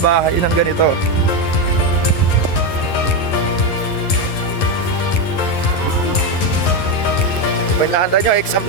bahay ng ganito. Pinahanda nyo, exam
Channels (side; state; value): right; late; 11 ms